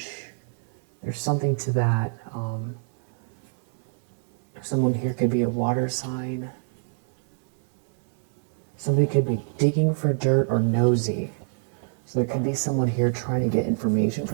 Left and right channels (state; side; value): silent; left; 61 dB below the other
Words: There's something to that. Someone here could be a water sign. Somebody could be digging for dirt or nosy. So there could be someone here trying to get information